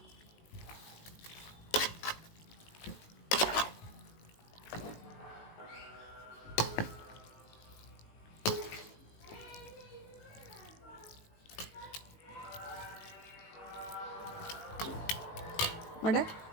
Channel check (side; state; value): right; late; 19 ms